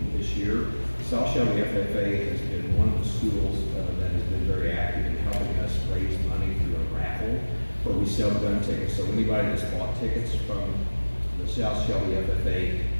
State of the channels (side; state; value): both; inverted; correlation -1.00